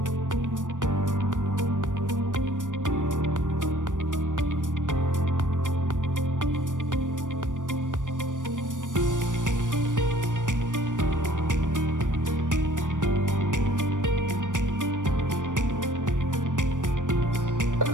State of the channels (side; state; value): left; late; 0.87 ms